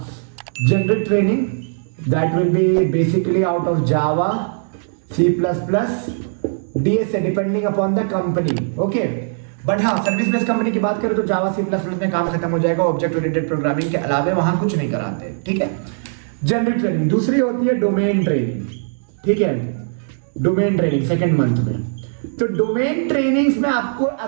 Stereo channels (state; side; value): silent; left; digital silence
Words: generic training that will be basically out of Java, C++, DSA depending upon the company. Okay, but हाँ service based company की बात करें तो Java, C++ में काम खत्म हो जाएगा। ऑब्जेक्ट ओरिएंटेड प्रोग्रामिंग के अलावे वहां कुछ नहीं कराते, ठीक है। जनरिक ट्रेनिंग दूसरी होती है, डोमेन ट्रेनिंग, ठीक है। डोमेन ट्रेनिंग सेकेंड मंथ में, तो डोमेन ट्रेनिंग्स में आपको